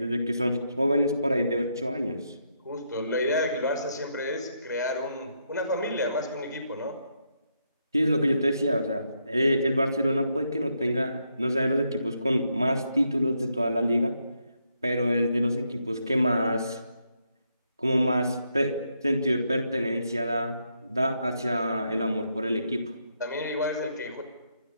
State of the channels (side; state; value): both; inverted; correlation -0.78